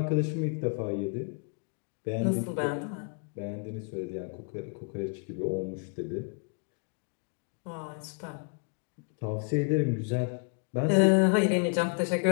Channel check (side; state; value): right; quieter; 38.3 dB